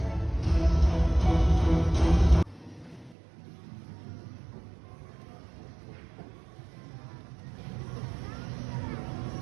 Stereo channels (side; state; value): left; drops out; at 3.2 s